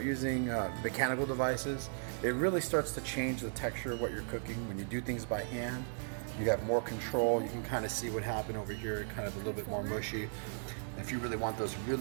using mechanical devices, it really starts to change the texture of what you're cooking. When you do things by hand, you have more control. You can kind of see what happened over here, kind of a little bit more mushy. If you really want those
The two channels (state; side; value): silent; left; digital silence